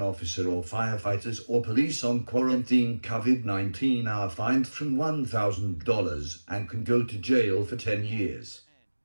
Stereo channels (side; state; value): both; inverted; correlation -1.00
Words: officer or firefighters or police on quarantine COVID-19 are fined from $1,000 and can go to jail for 10 years.